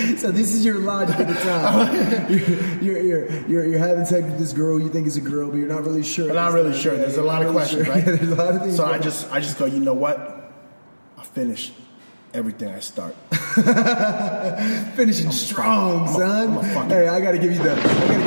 So this is your logic at the time. You're having sex with this girl you think is a girl, but you're not really sure. I'm not really sure. There's a lot of questions, right? There's a lot of things. So I just go, you know what? I'll finish everything I start. Finishing strong, son. I'm Hey, I gotta give you the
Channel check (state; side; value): inverted; both; correlation -1.00